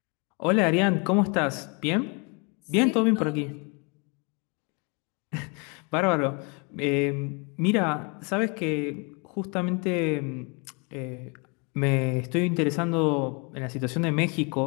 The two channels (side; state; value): right; quieter; 32.5 dB